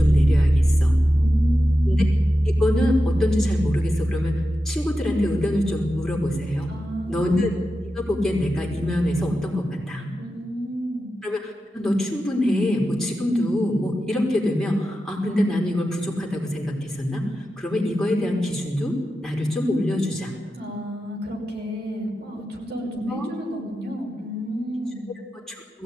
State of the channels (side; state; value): both; normal; correlation 0.91